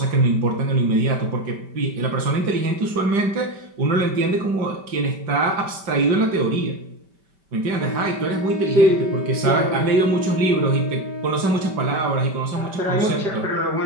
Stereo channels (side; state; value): left; late; 5.1 ms